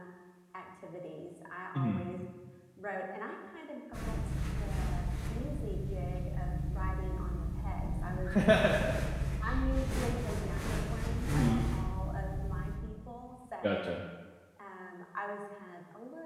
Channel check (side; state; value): both; identical; correlation 1.00